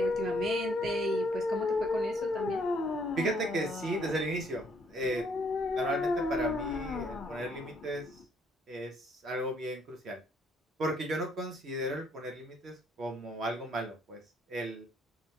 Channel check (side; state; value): both; normal; correlation 0.67